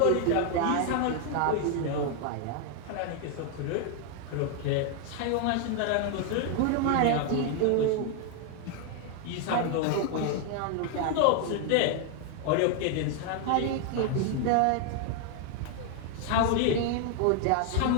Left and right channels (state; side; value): different; both; correlation 0.00